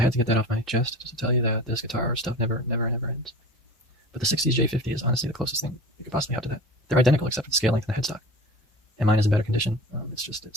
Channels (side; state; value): both; normal; correlation 0.37